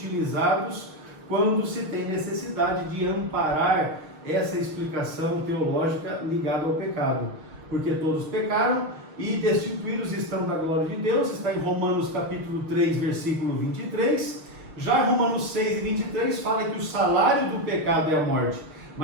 quando se tem necessidade de amparar essa explicação teológica ligada ao pecado, porque todos pecaram e destituídos estão da glória de Deus, está em Romanos capítulo 3, versículo 23, já em Romanos 6 e 23 fala que o salário do pecado é a morte,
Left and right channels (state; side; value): late; left; 6.5 ms